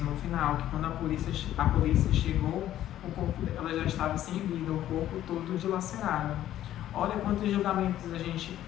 no final que quando a polícia chegou, o corpo dela já estava sem vida, o corpo todo dilacerado. Olha quantos julgamentos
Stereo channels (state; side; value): quieter; right; 12.6 dB